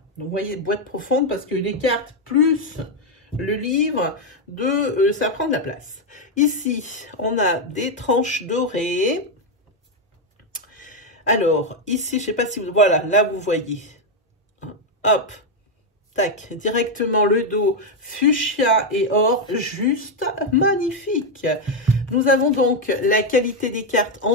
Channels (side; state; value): both; normal; correlation 0.03